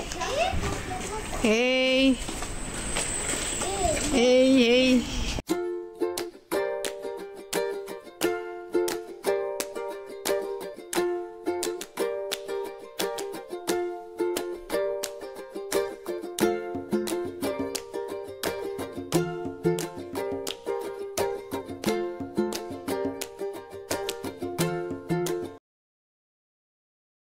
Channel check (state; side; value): identical; both; correlation 1.00